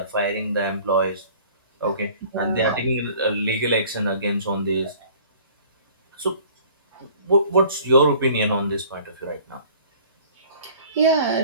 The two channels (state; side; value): inverted; both; correlation -0.50